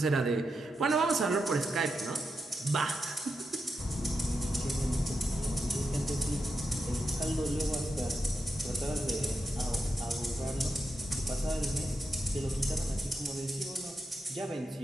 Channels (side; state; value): both; normal; correlation 0.86